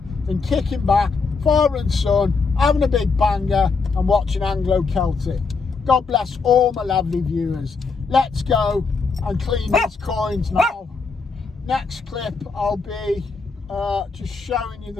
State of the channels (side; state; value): right; quieter; 4.6 dB